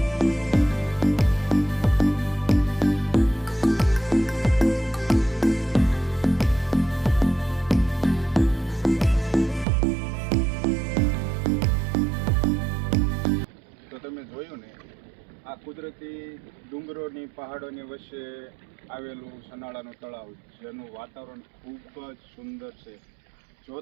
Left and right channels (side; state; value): left; drops out; at 9.7 s